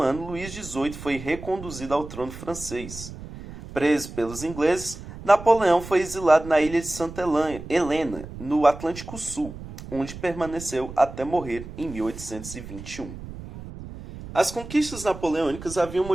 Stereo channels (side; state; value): right; noise; rumble, 13 dB below the sound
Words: ano, Luís XVIII foi reconduzido ao trono francês. Preso pelos ingleses, Napoleão foi exilado na ilha de Santa Helena, no Atlântico Sul, onde permaneceu até morrer em 1821. As conquistas napoleônicas haviam